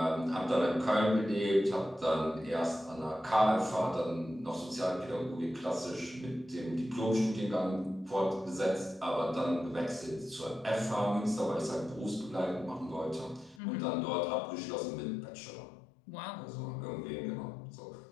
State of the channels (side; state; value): right; drops out; at 13.6 s